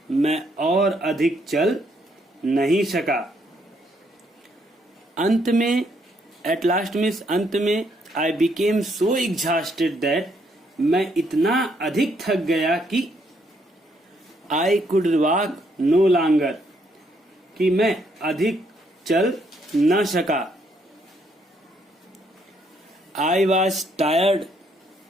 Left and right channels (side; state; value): both; normal; correlation 0.72